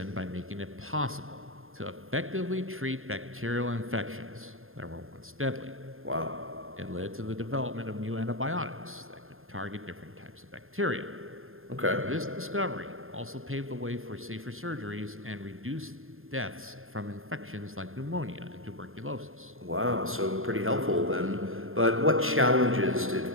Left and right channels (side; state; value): left; late; 0.60 ms